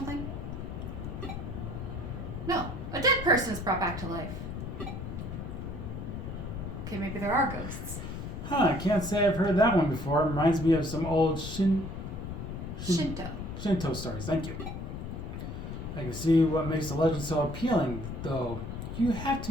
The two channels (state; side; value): noise; left; rumble, 6 dB below the sound